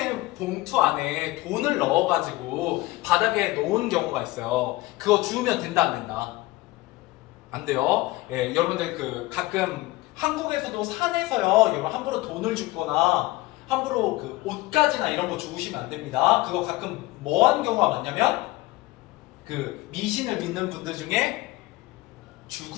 봉투 안에 돈을 넣어가지고 바닥에 놓은 경우가 있어요. 그거 주우면 된다 안 된다? 안 돼요. 여러분들 그 가끔 한국에서도 산에서요. 여러분 함부로 돈을 줍거나 함부로 그 옷가지나 이런 거 주우시면 안 됩니다. 그거 가끔 뭐한 경우가 많냐면 그 미신을 믿는 분들 중에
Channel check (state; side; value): quieter; right; 19.6 dB